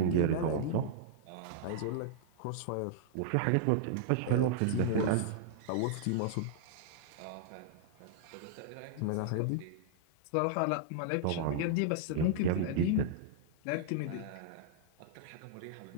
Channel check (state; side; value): different; both; correlation -0.01